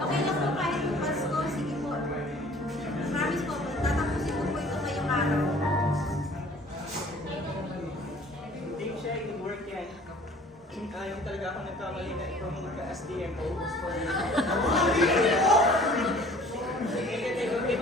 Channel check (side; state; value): both; normal; correlation 0.51